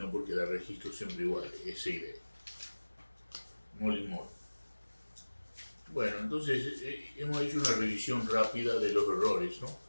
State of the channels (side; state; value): both; inverted; correlation -1.00